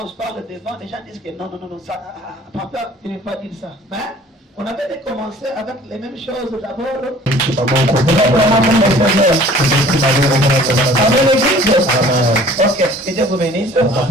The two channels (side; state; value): both; normal; correlation 0.50